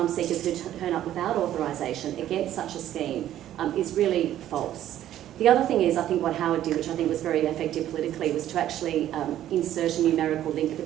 seekers who turn up without authorisation against such a scheme is really false. The other thing is, I think what Howard did, which I think was very effective politically, was to actually insert a numerical link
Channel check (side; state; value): left; quieter; 12.2 dB